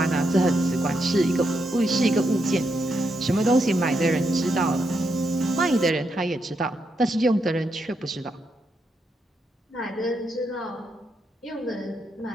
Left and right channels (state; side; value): normal; both; correlation 0.81